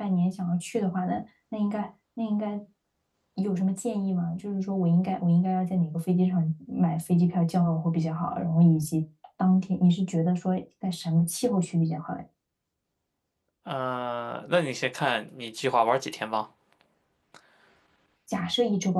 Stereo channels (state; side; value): identical; both; correlation 1.00